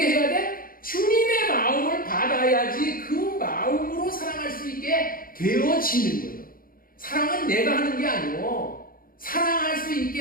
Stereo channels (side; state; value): right; late; 0.42 ms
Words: 해야 돼? 주님의 마음을 받아야지 그 마음으로 사랑할 수 있게 되어지는 거예요. 사랑은 내가 하는 게 아니고 사랑할 수